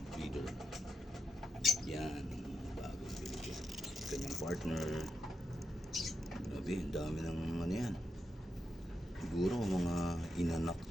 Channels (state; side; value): normal; both; correlation 0.84